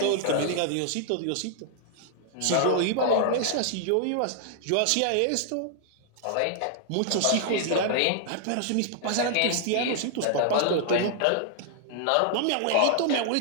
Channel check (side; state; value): both; different; correlation -0.01